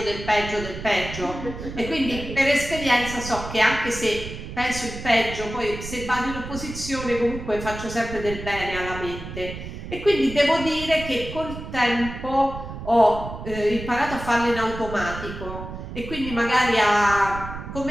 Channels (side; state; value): right; noise; rumble, 10 dB below the sound